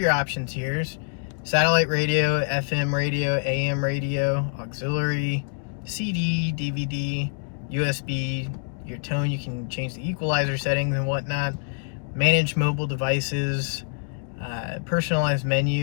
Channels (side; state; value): right; silent; digital silence